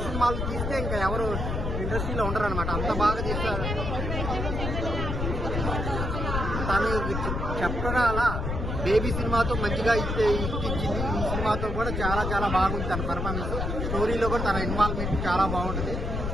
సినిమాలు తీస్తే ఇంకా ఎవరు ఇండస్ట్రీలో ఉండరు అనమాట. అంత బాగా తీస్తారు. తను చెప్పగా అలా బేబీ సినిమాతో మంచిగా ఇచ్చింది. ఈ సినిమాతో కూడా చాలా చాలా బాగుంది తన పర్ఫార్మెన్స్. స్టోరీలో కూడా తన ఇన్వాల్వ్మెంట్ చాలా బాగుంటుంది.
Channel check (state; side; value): noise; left; rumble, 2 dB below the sound